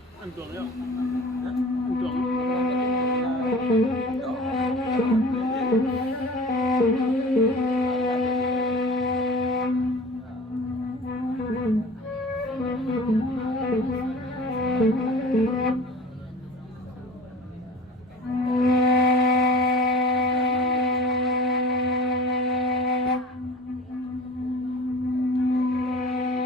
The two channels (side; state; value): both; normal; correlation 0.41